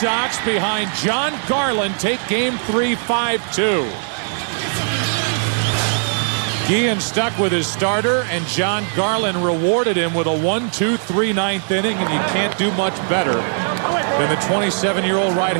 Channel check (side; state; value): left; silent; 66 dB below the other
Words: behind Jon Garland take game 3, 5-2. Guillen stuck with his starter, and Jon Garland rewarded him with a 1-2-3 9th inning, and you can't do much better than the 27-year-old